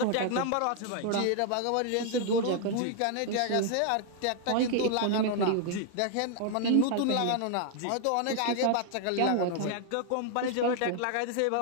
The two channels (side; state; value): both; different; correlation 0.00